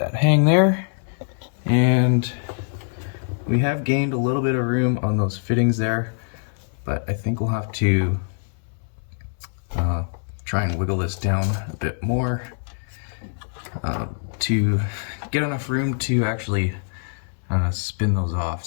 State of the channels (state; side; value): silent; right; 63 dB below the other